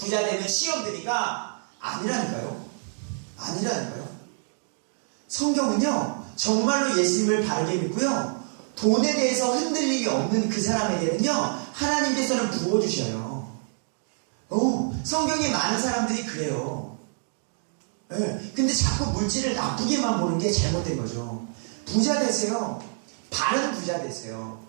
되면 시험 드니까 아니라니까요. 성경은요, 정말로 예수님을 바르게 믿고요, 돈에 대해서 흔들림이 없는 그 사람에게는요, 하나님께서는 부어주셔요. 성경에 많은 사람들이 그래요. 근데 자꾸 물질을 나쁘게만 보는 게 잘못된 거죠. 부자 되세요. 바른 부자 되세요.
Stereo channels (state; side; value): silent; left; digital silence